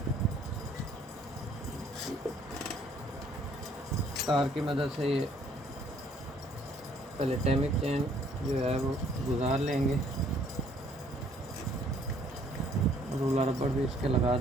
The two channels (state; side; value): normal; both; correlation 0.62